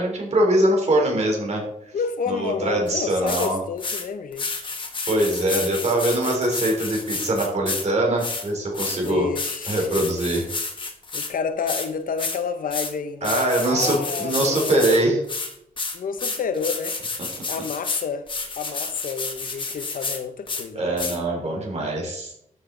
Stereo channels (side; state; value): both; normal; correlation 0.44